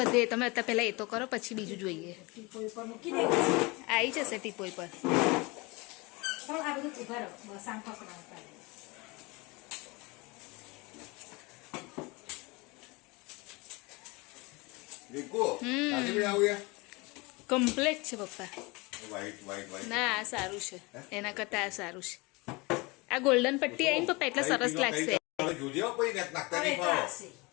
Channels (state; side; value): quieter; right; 25.6 dB